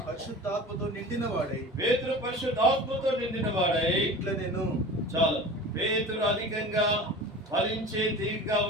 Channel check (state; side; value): normal; both; correlation 0.37